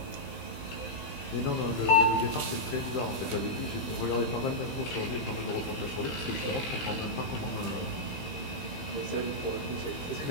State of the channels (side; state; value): right; late; 15 ms